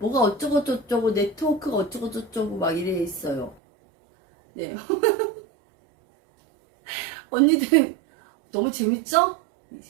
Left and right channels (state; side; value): drops out; left; at 3.6 s